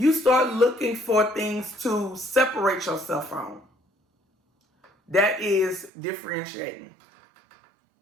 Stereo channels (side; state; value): left; drops out; at 5.9 s